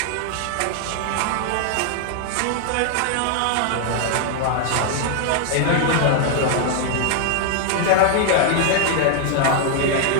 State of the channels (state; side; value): different; both; correlation 0.00